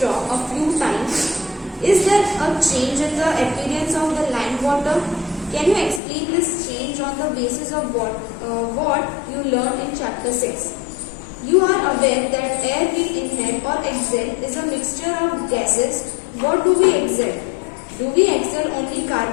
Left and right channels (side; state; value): right; drops out; at 6.0 s